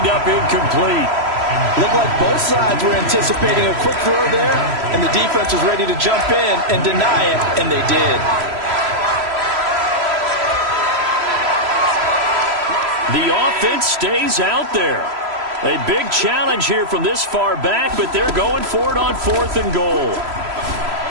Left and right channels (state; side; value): late; left; 3.0 ms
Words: up incomplete. Looked like both sides were anticipating a quick throw there, and the defense was ready to jump in and deny it, and they did. The offense stays out there. A big challenge here from this far back, but they're going for it on 4th and goal.